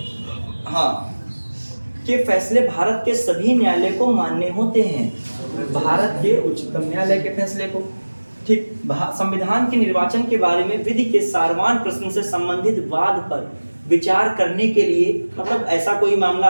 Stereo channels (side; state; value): both; inverted; correlation -1.00